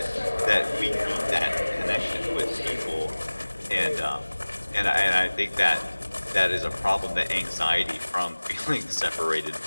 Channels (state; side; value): inverted; both; correlation -1.00